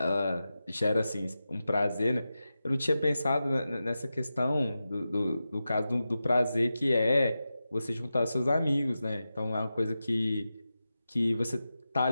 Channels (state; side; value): inverted; both; correlation -0.92